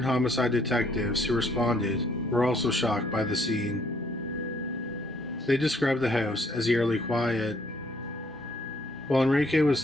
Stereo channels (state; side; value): normal; both; correlation 0.65